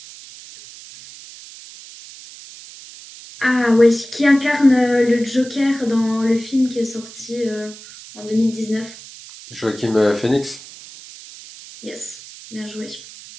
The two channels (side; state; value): right; noise; hiss, 17 dB below the sound